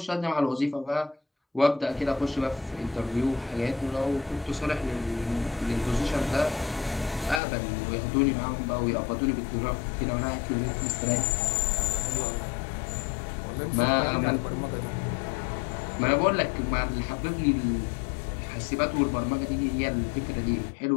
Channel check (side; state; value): right; drops out; at 7.4 s